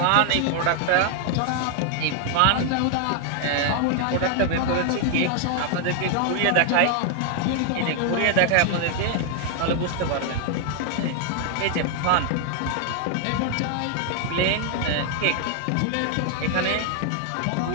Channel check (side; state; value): both; different; correlation 0.00